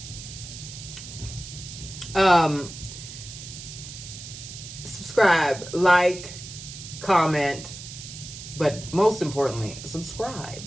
Subscribe, like, comment, but most importantly,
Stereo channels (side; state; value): right; noise; hiss, 12 dB below the sound